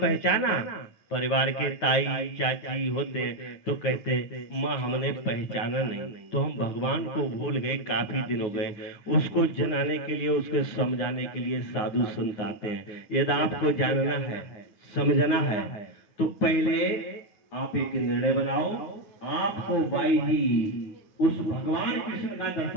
परिवार के ताई चाची होते हैं तो कहते हैं, माँ हमने पहचाना नहीं, तो हम भगवान को भूल गए, काफी दिन हो गए। उसको जनाने के लिए, उसके समझाने के लिए साधु संत आते हैं। यदि आपको जानना है, समझना है, तो पहले आप एक निर्णय बनाओ, आपको बाई जी उस भगवान कृष्ण का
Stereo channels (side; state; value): right; late; 9.4 ms